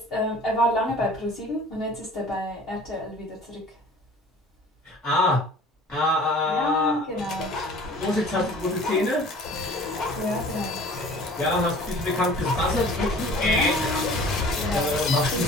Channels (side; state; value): both; normal; correlation 0.47